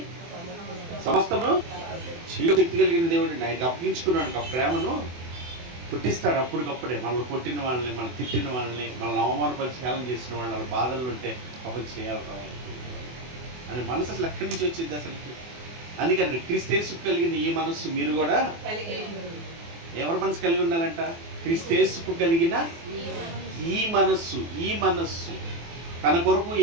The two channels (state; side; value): late; left; 24 ms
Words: సమస్తము శక్తి కలిగిన దేవుడిని ఆయనకి అప్పగించుకున్నాడు. ఆ ప్రేమను పుట్టిస్తాడు అప్పటికప్పుడే. మనల్ని కొట్టిన వాళ్ళని, మనం తిట్టిన వాళ్ళని, మనల్ని అవమానపరిచి హేళన చేసిన వాళ్ళ బాధలు ఉంటే పాపం చేయాలి అని మనసు అసలు ఎక్కడి నుంచి వచ్చింది అసలుకి? అందుకని క్రీస్తేసు కలిగిన ఈ మనస్సు మీరు కూడా ఎవరి మనసు కలిగి ఉండాలంట? క్రీస్తేసుకు కలిగిన ఈ మనస్సు తన కొరకు